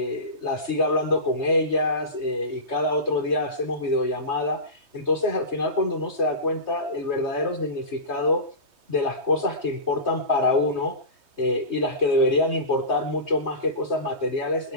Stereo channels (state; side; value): late; left; 3.2 ms